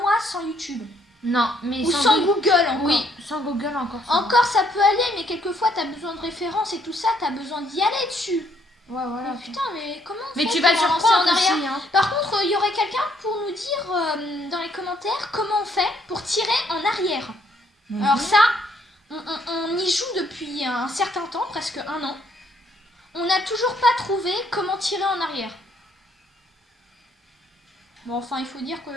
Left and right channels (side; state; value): both; normal; correlation 0.68